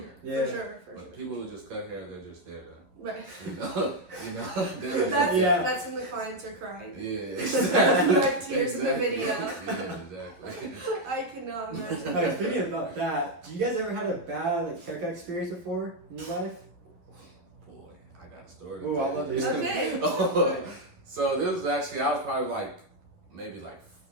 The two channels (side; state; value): left; late; 11 ms